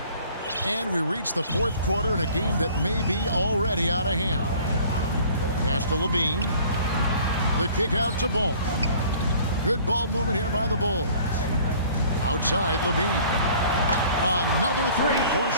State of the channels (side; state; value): both; inverted; correlation -0.51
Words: And we reach the fourth quarter in a game that may be already out of hand. Pass to LaVine. The kick out to Ball. Good ball movement here by the Bulls. Outside LaVine. Another 3 for